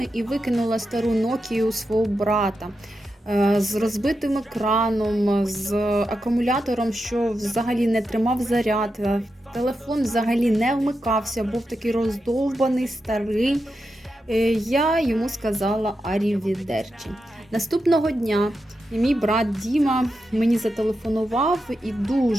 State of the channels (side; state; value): both; normal; correlation 0.88